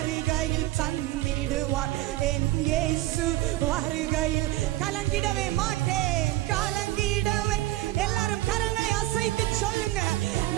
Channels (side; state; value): left; quieter; 16.5 dB